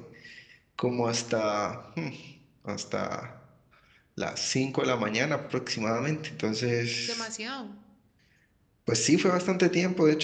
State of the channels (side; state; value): both; identical; correlation 1.00